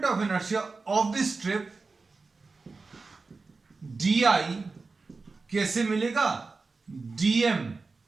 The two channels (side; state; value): left; quieter; 4.0 dB